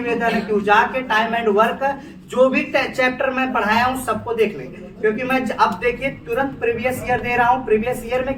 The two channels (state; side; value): identical; both; correlation 1.00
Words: है कि जाके टाइम एंड वर्क जो भी चैप्टर मैं पढ़ाया हूँ सबको देख लेंगे, क्योंकि मैं अब देखिए तुरंत प्रीवियस ईयर दे रहा हूँ। प्रीवियस ईयर